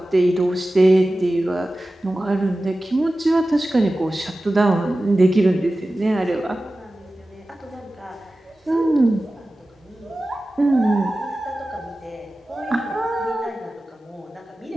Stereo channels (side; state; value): both; normal; correlation 0.95